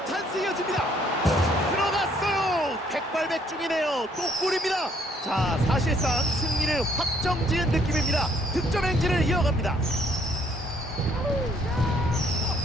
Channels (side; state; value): both; normal; correlation 0.65